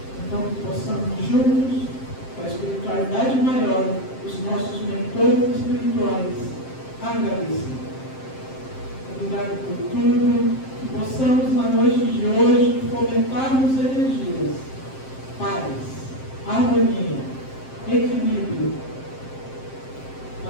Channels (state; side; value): late; right; 7.6 ms